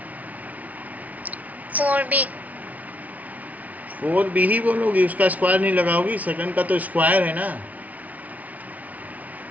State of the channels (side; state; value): left; late; 0.073 ms